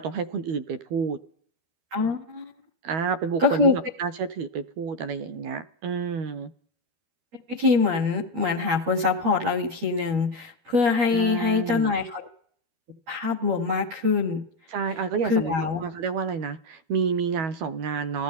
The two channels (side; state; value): left; late; 12 ms